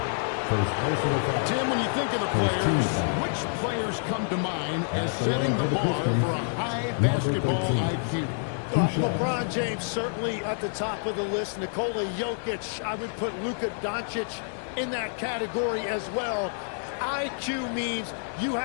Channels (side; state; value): right; silent; digital silence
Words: Tim, when you think of the players, which players come to mind as setting the bar for a high basketball IQ? LeBron James certainly at the top of the list. Nikola Jokic, I would put Luka Doncic in that category as well. IQ means you